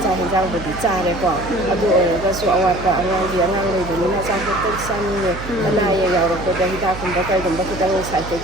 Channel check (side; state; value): right; noise; hum, 11 dB below the sound